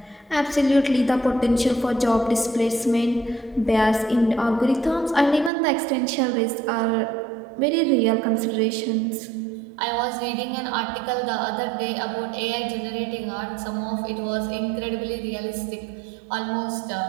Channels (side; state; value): left; drops out; at 5.5 s